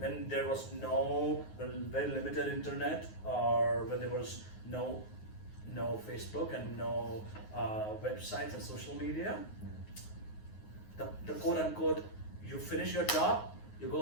there was no very limited internet, or when there was no Facebook and no websites and social media. The quote unquote, you finish your job, you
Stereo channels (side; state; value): right; late; 9.5 ms